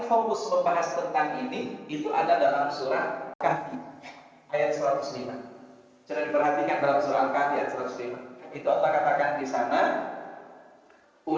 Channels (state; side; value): identical; both; correlation 1.00